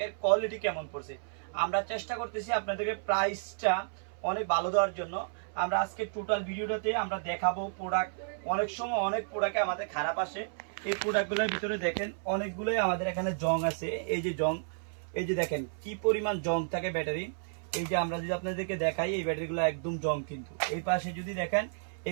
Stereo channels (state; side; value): silent; left; 57 dB below the other